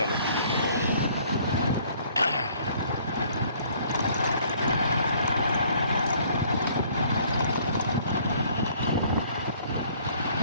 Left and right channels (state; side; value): inverted; both; correlation -0.59